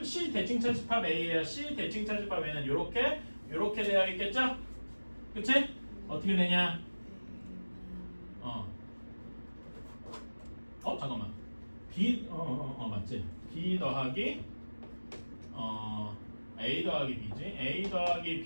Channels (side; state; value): both; inverted; correlation -1.00